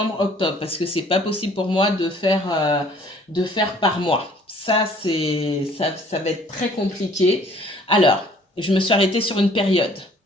parce que c'est pas possible pour moi de faire par mois. Ça va être très compliqué. Alors, je me suis arrêtée sur une période.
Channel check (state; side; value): normal; both; correlation 0.56